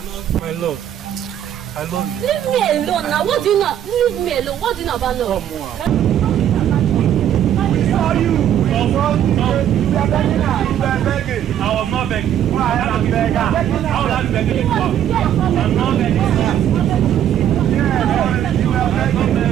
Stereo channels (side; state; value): left; quieter; 10.4 dB